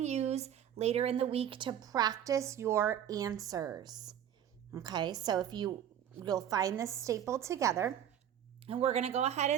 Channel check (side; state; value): left; quieter; 9.9 dB